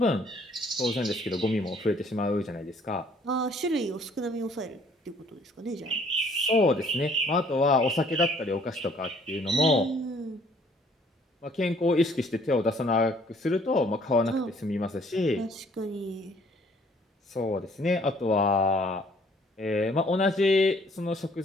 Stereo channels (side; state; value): both; normal; correlation 0.60